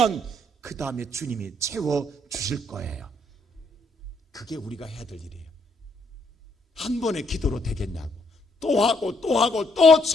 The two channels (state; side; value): normal; both; correlation 0.71